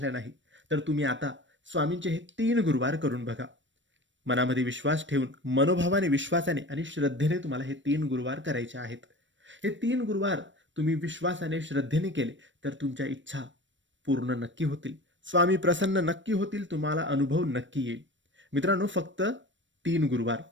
नाहीत. तर तुम्ही आता स्वामींचे हे 3 गुरुवार करून बघा. मनामध्ये विश्वास ठेवून, मनोभावाने, विश्वासाने आणि श्रद्धेने तुम्हाला हे 3 गुरुवार करायचे आहेत. हे 3 गुरुवार तुम्ही विश्वासाने, श्रद्धेने केले तर तुमच्या इच्छा पूर्ण नक्की होतील. स्वामी प्रसन्न नक्की होतील. तुम्हाला अनुभव नक्की येईल. मित्रांनो, फक्त 3 गुरुवार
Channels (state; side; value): late; left; 0.54 ms